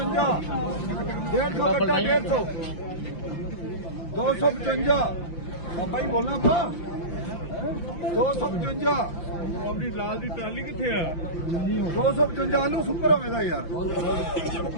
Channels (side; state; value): right; late; 5.8 ms